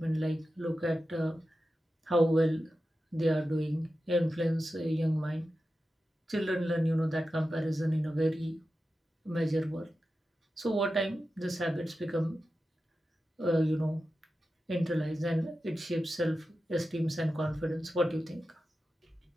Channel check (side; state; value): both; normal; correlation 0.92